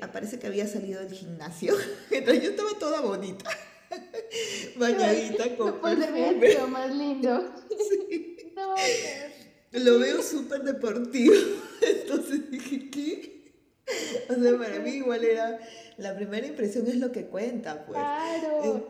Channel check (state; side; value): identical; both; correlation 1.00